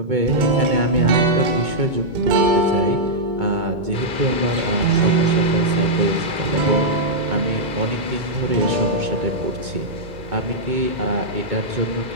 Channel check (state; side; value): late; left; 2.2 ms